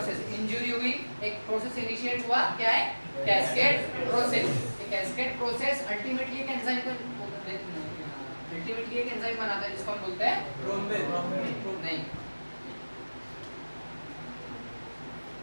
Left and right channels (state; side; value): inverted; both; correlation -1.00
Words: इंजरी हुई, एक प्रोसेस इनिशिएट हुआ, क्या है? Cascade process. Cascade process ultimately एक एंजाइम को अल्टीमेटली एक एंजाइम बनाता है जिसको हम बोलते हैं थ्रोम्बिन। नहीं,